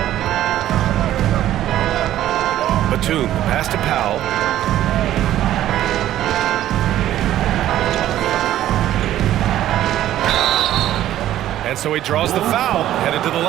Batum, pass to Powell. And so he draws the foul, headed to the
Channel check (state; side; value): quieter; left; 12.8 dB